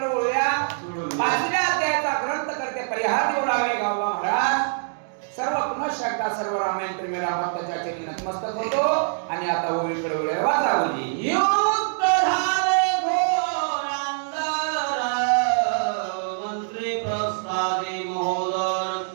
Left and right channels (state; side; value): silent; left; digital silence